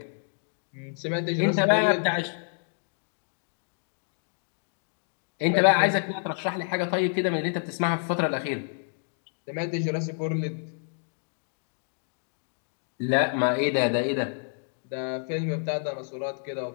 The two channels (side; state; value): right; silent; 59 dB below the other